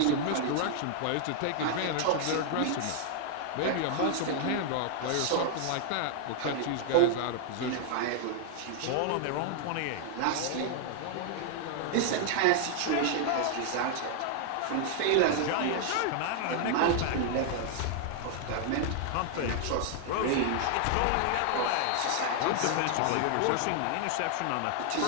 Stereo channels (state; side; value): different; both; correlation 0.00